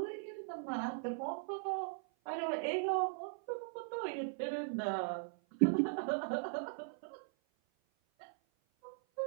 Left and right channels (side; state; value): left; silent; 52 dB below the other